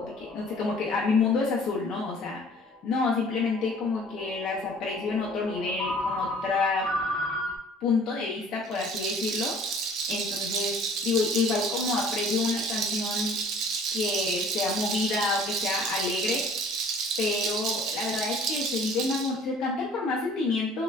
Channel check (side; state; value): both; normal; correlation 0.51